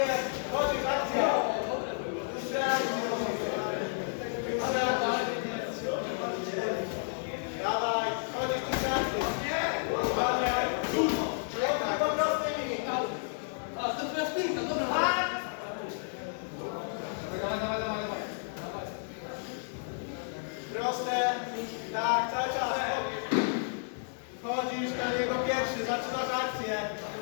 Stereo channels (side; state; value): right; silent; digital silence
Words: jest. Wchodzisz, akcja. Dłuższe akcje. Dłuższe akcje. Dawaj, wchodzisz, dłuższe akcje. Uwalniaj. Przejdźmy go prostymi. A, to twoja spinka, dobra. Proste. Tak, cały czas. Wchodzisz na niego pierwszy, zaczynasz akcję.